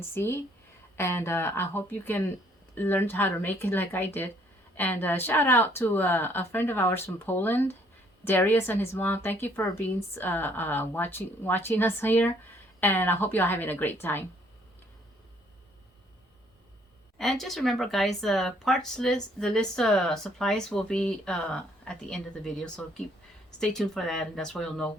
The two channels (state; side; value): normal; both; correlation 0.64